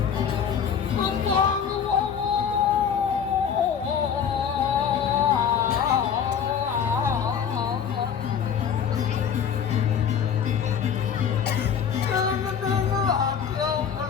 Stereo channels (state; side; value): quieter; right; 7.7 dB